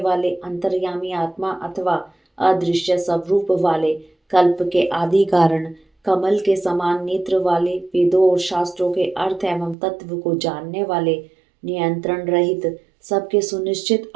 अंतर्यामी आत्मा अथवा अदृश्य स्वरूप वाले, कल्प के आदि कारण, कमल के समान नेत्र वाले, वेदों और शास्त्रों के अर्थ एवं तत्व को जानने वाले, नियंत्रण रहित, सबके सुनिश्चित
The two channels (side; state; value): left; drops out; at 9.8 s